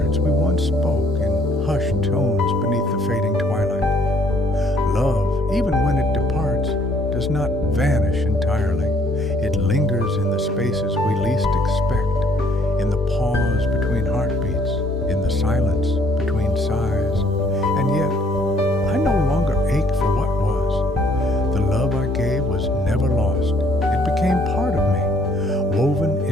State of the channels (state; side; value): normal; both; correlation 0.63